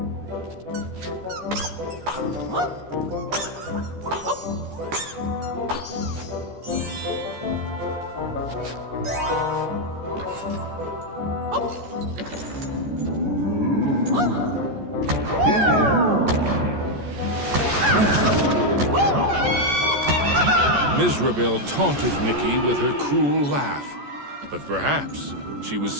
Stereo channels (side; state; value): left; late; 14 ms